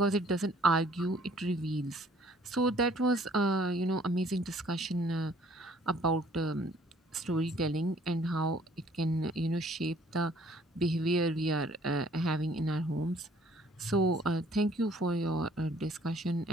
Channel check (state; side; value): normal; both; correlation 0.59